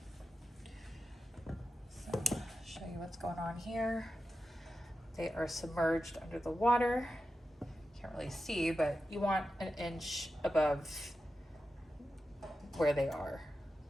So I'll show you what's going on here. They are submerged under the water. Can't really see, but you want an inch above where they are.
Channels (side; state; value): both; normal; correlation 0.91